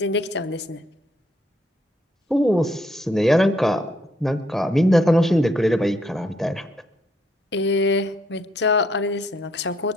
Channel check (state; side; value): normal; both; correlation 0.71